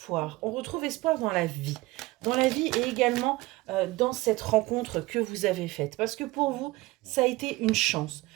On retrouve espoir dans la vie. Dans la vie et également dans cette rencontre que vous avez faite. Parce que pour vous, ça a été une chance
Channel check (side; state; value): left; quieter; 20.2 dB